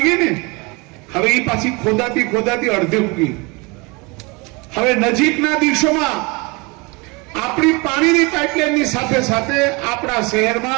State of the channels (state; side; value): quieter; left; 27.5 dB